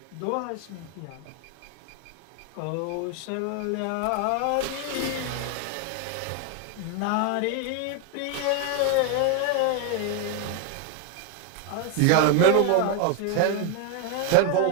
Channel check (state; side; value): different; both; correlation 0.00